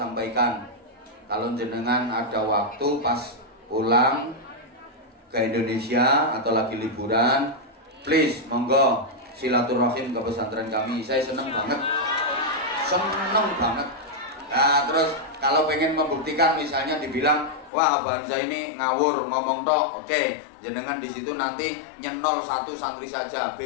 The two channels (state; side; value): drops out; right; at 17.7 s